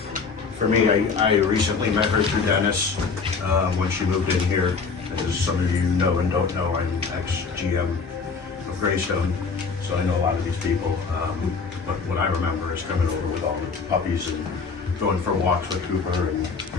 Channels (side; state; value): right; quieter; 5.0 dB